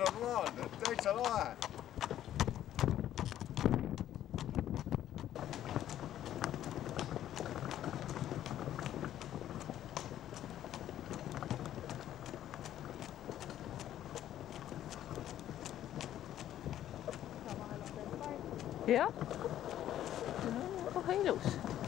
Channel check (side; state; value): right; quieter; 11.9 dB